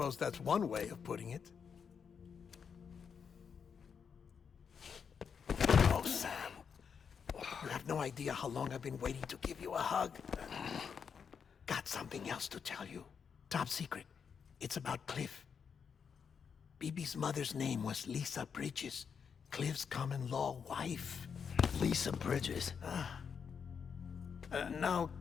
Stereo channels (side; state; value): right; quieter; 6.6 dB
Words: that's one way of putting it. Oh, Sam. You have no idea how long I've been waiting to give you a hug. Got something else to tell you. Top secret. It's about Cliff. BB's mother's name was Lisa Bridges, Cliff's common-law wife. Lisa Bridges. Now,